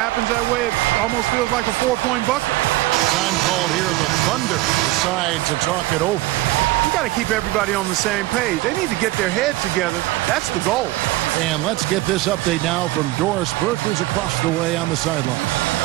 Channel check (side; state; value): left; quieter; 18.2 dB